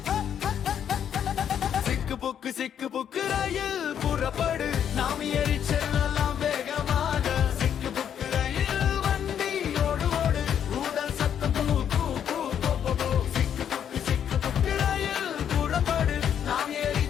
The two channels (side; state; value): right; quieter; 8.9 dB